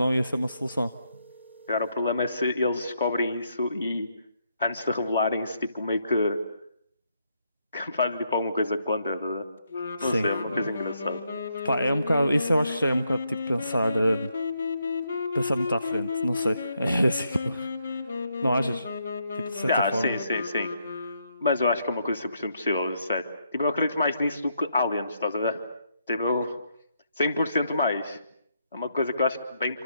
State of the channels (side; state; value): both; inverted; correlation -0.77